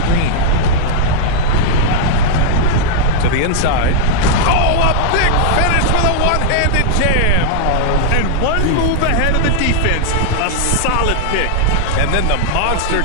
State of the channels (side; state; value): both; different; correlation -0.01